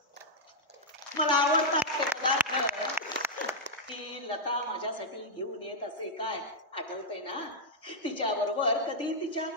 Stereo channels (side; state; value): both; normal; correlation -0.05